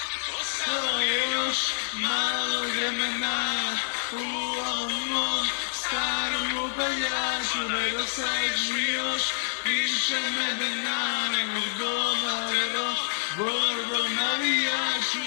Ostalo je još malo vremena u ovom starom upaljaču, nedostaješ mi još više medena nego domadeno vodu navijaču.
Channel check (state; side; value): silent; right; digital silence